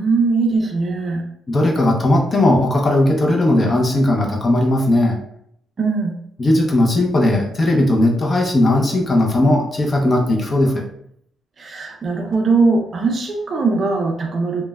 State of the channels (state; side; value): normal; both; correlation 0.83